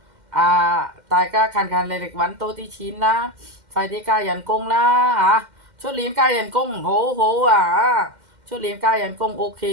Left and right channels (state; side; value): late; left; 2.1 ms